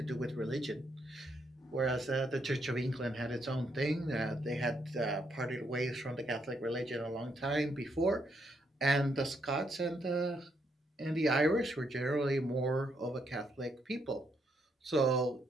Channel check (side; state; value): both; normal; correlation 0.76